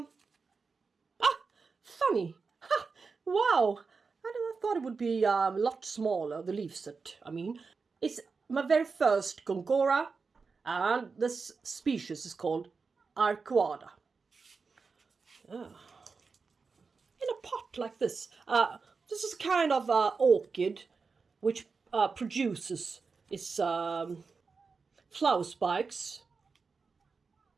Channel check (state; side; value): quieter; left; 4.8 dB